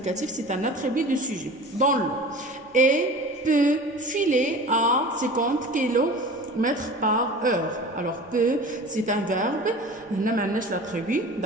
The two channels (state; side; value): normal; both; correlation 0.38